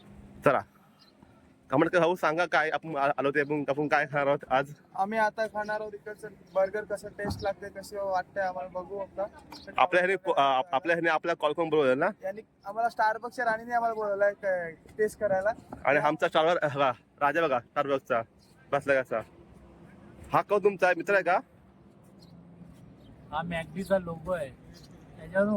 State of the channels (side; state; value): both; identical; correlation 1.00